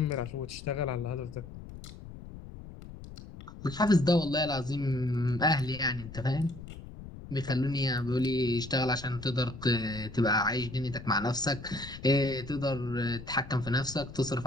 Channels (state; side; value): noise; left; rumble, 14 dB below the sound